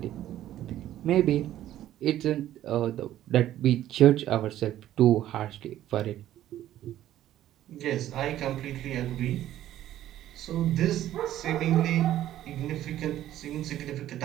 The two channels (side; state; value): left; quieter; 12.8 dB